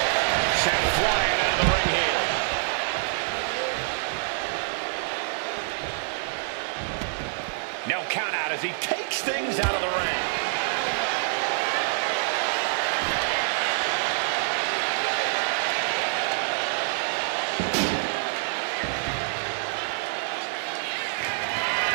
Sent flying out of the ring here. No count out as he takes things out of the ring.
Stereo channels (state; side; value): silent; left; digital silence